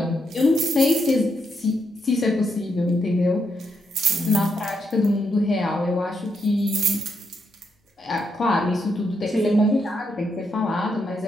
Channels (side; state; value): both; normal; correlation 0.80